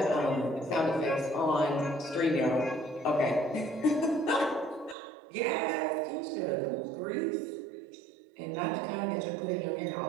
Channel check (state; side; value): drops out; left; at 5.0 s